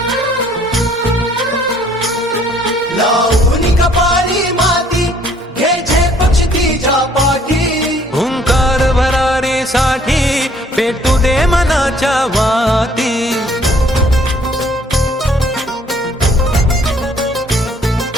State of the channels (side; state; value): both; normal; correlation 0.61